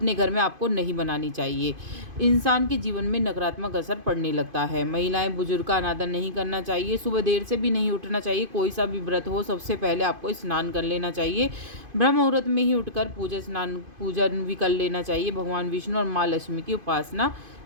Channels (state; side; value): late; left; 2.5 ms